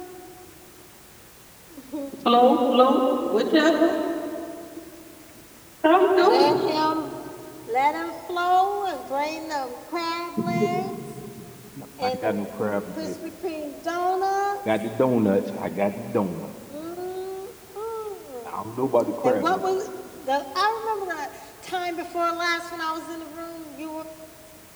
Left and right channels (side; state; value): both; identical; correlation 1.00